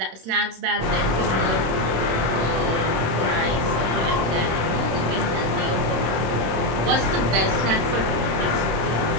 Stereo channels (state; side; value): late; left; 26 ms